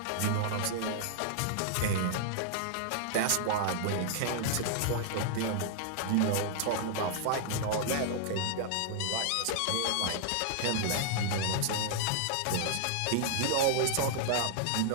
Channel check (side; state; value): both; different; correlation -0.01